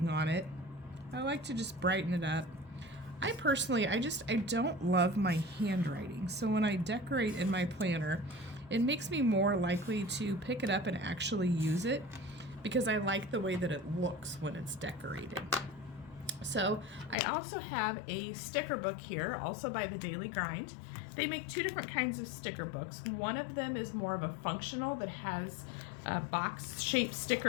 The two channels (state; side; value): drops out; right; at 17.2 s